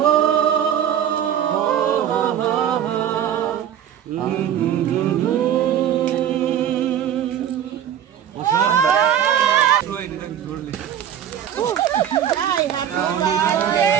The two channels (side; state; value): left; quieter; 9.8 dB